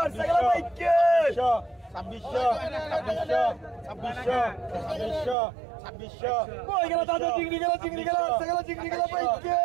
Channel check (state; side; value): drops out; left; at 5.4 s